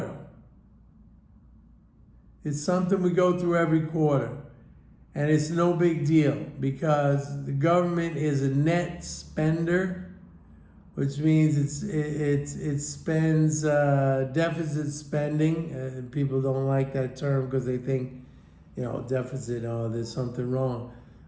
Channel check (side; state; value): both; identical; correlation 1.00